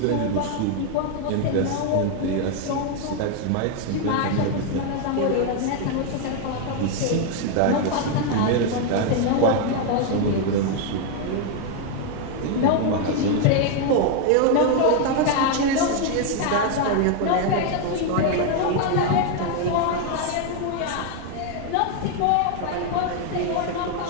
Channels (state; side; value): different; both; correlation 0.01